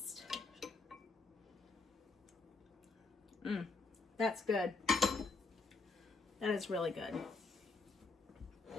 That's good. That is really good.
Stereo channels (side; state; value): right; quieter; 3.8 dB